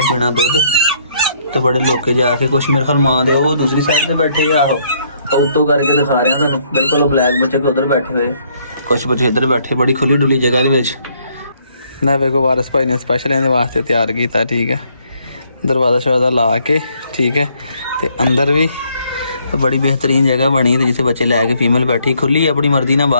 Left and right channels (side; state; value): both; inverted; correlation -0.68